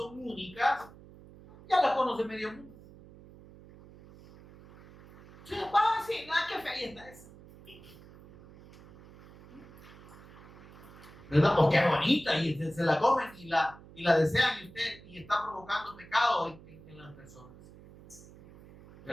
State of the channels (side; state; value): right; noise; hum, 21 dB below the sound